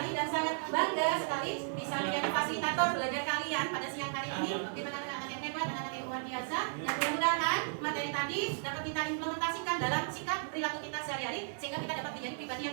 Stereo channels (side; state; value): left; silent; 55 dB below the other